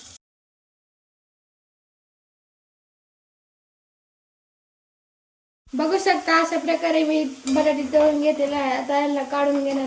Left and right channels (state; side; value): identical; both; correlation 1.00